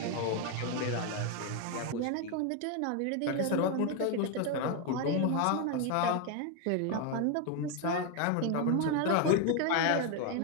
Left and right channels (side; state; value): both; different; correlation 0.01